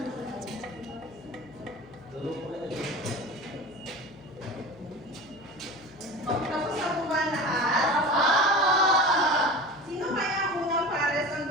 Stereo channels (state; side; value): noise; left; hum, 21 dB below the sound